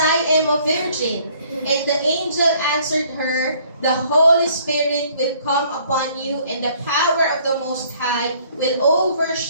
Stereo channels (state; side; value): inverted; both; correlation -0.60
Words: am a virgin?" And the angel answered her, "The Holy Spirit will come upon you, and the power of the Most High will